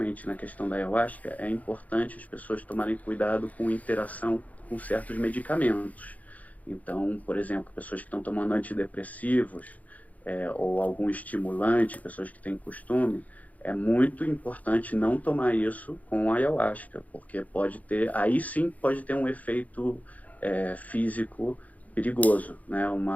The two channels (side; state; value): right; late; 0.074 ms